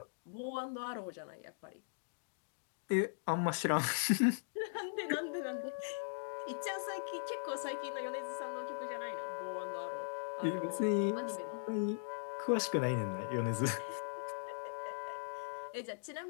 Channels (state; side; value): silent; right; digital silence